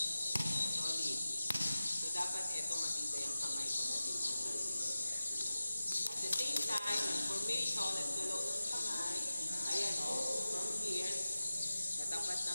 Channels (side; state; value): both; inverted; correlation -0.95